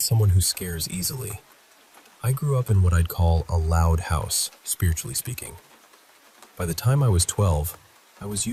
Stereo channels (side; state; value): both; identical; correlation 1.00